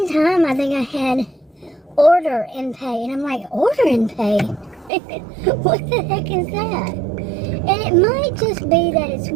time I think I had order and pay, and I'm like, order and pay? What the heck is that? And it might just be that it's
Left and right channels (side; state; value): left; drops out; at 4.9 s